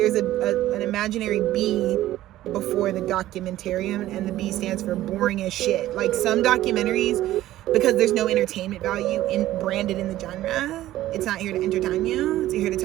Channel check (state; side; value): quieter; left; 14.6 dB